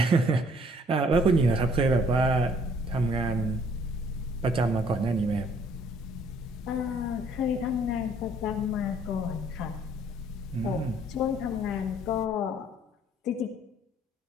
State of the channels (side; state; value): both; normal; correlation 0.60